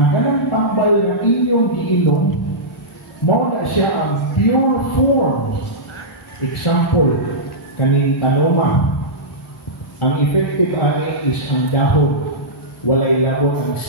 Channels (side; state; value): both; normal; correlation -0.13